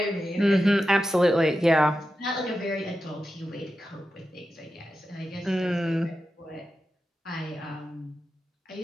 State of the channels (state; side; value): normal; both; correlation 0.91